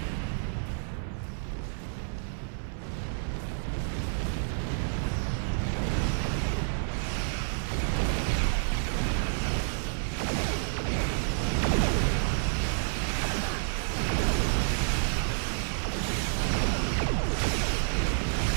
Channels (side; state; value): left; silent; 56 dB below the other